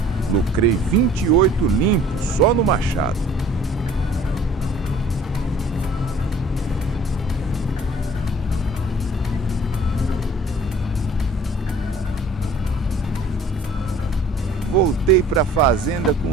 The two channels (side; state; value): both; normal; correlation 0.51